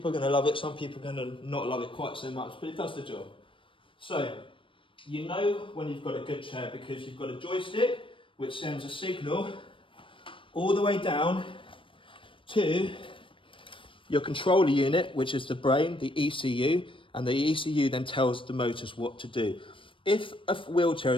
are going to love it, some people are going to not love it quite so much, but it does the job. So You know when you've got a good chair because you've got a joystick which sends a signal all the way down to your controller unit, which is the brain, the ECU, and the ECU then tells the motors what to do. If a wheelchair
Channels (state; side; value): late; right; 0.25 ms